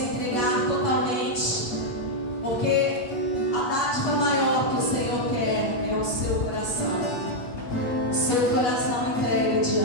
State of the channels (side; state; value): right; late; 8.2 ms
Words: totalmente, porque a dádiva maior que o Senhor quer é o seu coração, entregue